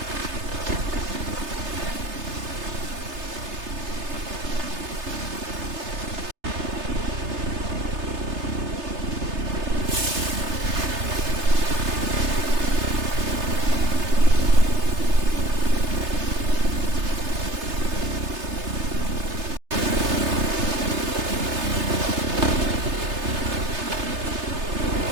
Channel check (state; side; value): late; left; 3.3 ms